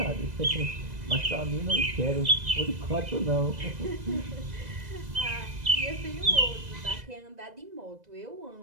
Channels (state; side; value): late; left; 2.0 ms